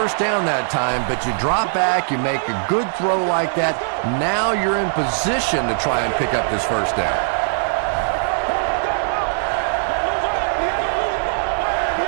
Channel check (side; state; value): left; silent; 66 dB below the other